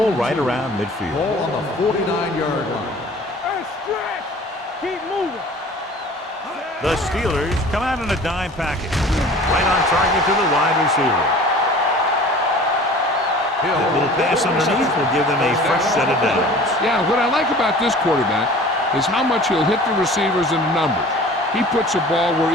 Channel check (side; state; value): both; normal; correlation 0.45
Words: right around midfield. Ball on the 49-yard line. Keep moving. The Steelers come out in a dime package. Right on target to the wide receiver. That little pass underneath will give them a fresh set of downs. Yeah, what I like about this quarterback is how much he'll hit the receivers in the numbers. He puts a ball where